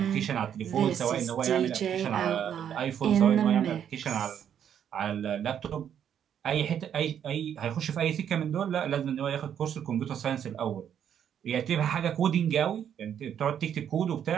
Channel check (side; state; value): left; quieter; 9.1 dB